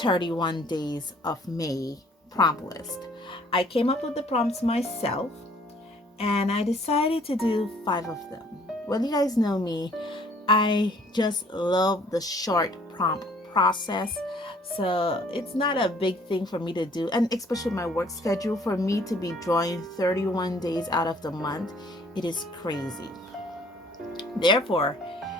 days of May prompt list. I came up with the prompts myself and I decided to do 5 of them. Well, you guys know me, I just love the short prompt process. So it's not a big thing for me to do, and especially my work schedule, for me to be drawing 31 days out of the month, it is crazy. Therefore,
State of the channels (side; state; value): both; normal; correlation 0.59